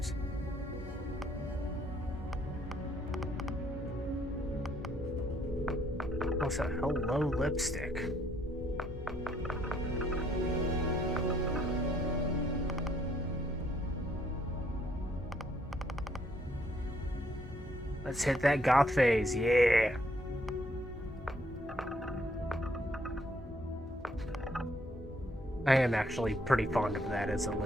Also, hello, lipstick. Let's hit that goth phase, yeah. I am actually pretty fond of that as a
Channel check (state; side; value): normal; both; correlation 0.68